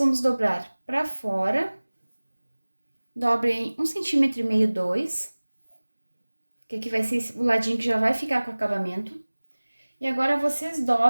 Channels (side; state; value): both; inverted; correlation -1.00